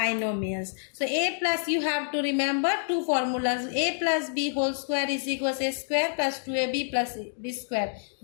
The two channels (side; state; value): right; silent; digital silence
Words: So a plus, you have to remember two formulas. A plus b whole square is equals a square plus 2ab plus b square.